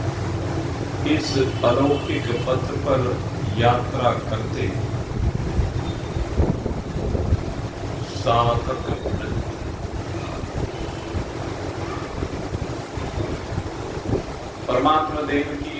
इस अलौकिक पथ पर यात्रा करते साधक परमात्मा देव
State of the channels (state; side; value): identical; both; correlation 1.00